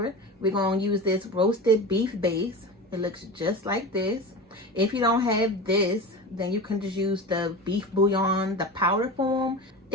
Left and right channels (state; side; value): normal; both; correlation 0.29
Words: we're going to use this roasted beef base. It looks just like this. If you don't have this, then you can just use the beef bouillon, the powder form.